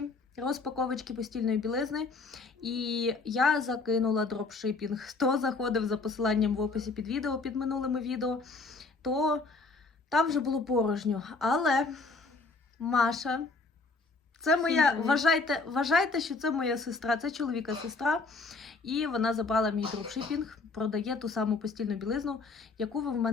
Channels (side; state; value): right; quieter; 3.8 dB